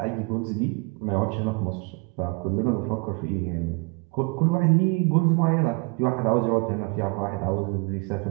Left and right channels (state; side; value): quieter; left; 29.7 dB